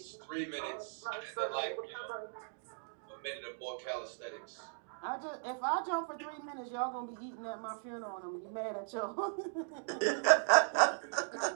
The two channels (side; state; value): left; silent; digital silence